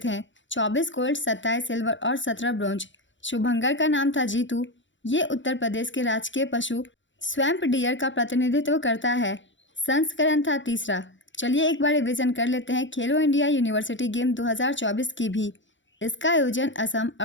24 गोल्ड, 27 सिल्वर और 17 ब्रॉन्ज। शुभंकर का नाम था जीतू। ये उत्तर प्रदेश के राजकीय पशु स्वैम्प डियर का प्रतिनिधित्व करता है। संस्करण था तीसरा। चलिए एक बार रिवीजन कर लेते हैं खेलो इंडिया यूनिवर्सिटी गेम 2024 की भी। इसका आयोजन असम,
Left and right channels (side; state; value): right; late; 0.54 ms